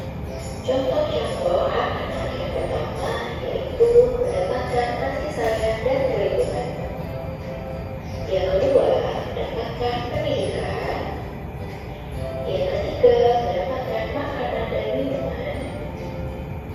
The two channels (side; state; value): both; identical; correlation 1.00